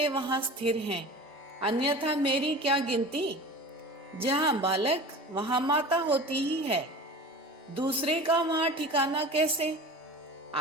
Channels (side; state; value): both; normal; correlation 0.36